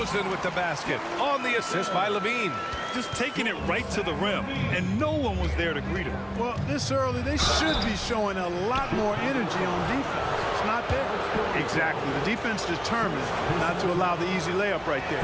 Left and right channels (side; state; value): both; identical; correlation 1.00